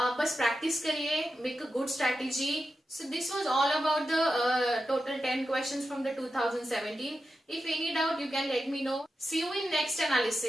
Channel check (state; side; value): normal; both; correlation 0.90